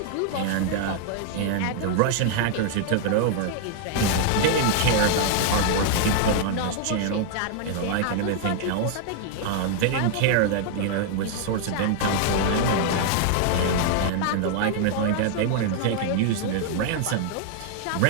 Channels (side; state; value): both; different; correlation 0.00